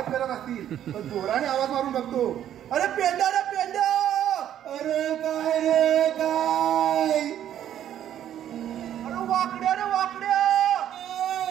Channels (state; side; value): quieter; left; 10.8 dB